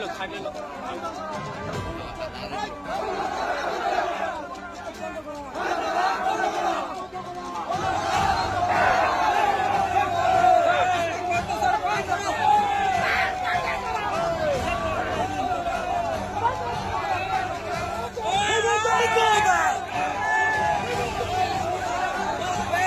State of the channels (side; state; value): both; identical; correlation 1.00